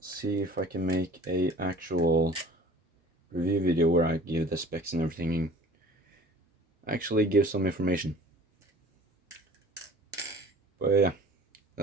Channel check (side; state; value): both; normal; correlation 0.46